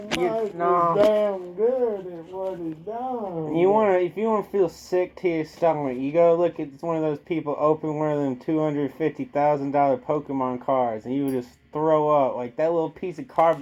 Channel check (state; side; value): identical; both; correlation 1.00